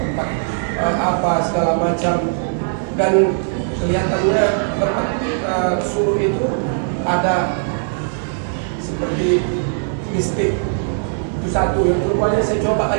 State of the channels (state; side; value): silent; left; digital silence